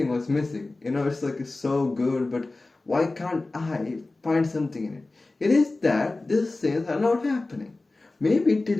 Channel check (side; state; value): right; quieter; 3.2 dB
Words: was missing. It's so good, but why can't I find something in it? It is that these things are not happening. Maybe it did